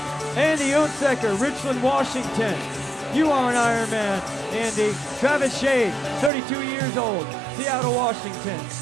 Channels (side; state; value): left; drops out; at 6.3 s